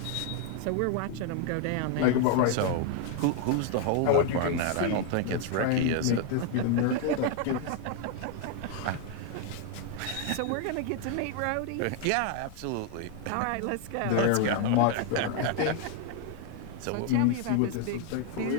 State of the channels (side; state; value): both; different; correlation 0.00